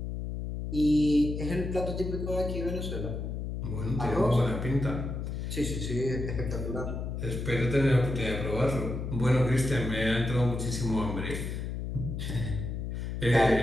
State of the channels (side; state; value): left; noise; hum, 4 dB below the sound